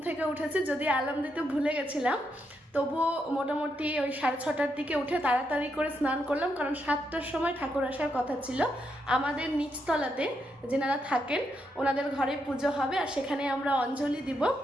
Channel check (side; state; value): both; normal; correlation 0.81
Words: থেকে উঠেছি, যদি অ্যালার্ম দিতে ভুলে গেছিলাম, তবুও মোটামুটি ওই 6:30টার দিকে উঠে তাড়াতাড়ি করে স্নান করলাম, কারণ 7টার সময় ঠাকুর আসার কথা ছিল। আমাদের নিচতলাতে যেনারা থাকেন ওনাদের ঘরে পুজো হবে, আর সেখানে আমরা অঞ্জলি দিব।